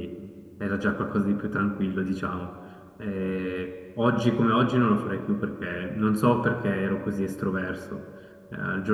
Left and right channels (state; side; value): identical; both; correlation 1.00